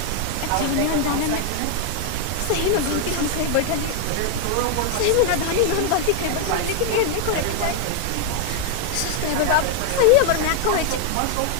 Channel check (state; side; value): different; both; correlation 0.00